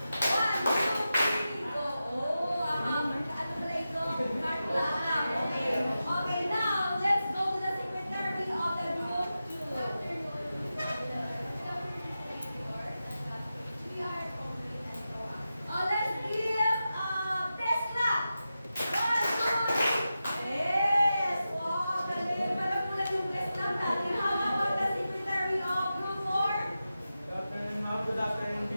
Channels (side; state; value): both; inverted; correlation -0.92